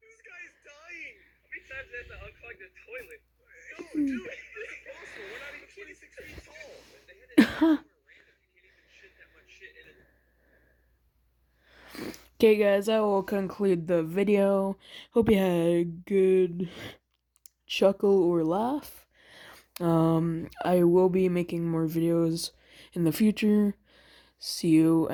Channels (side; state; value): both; identical; correlation 1.00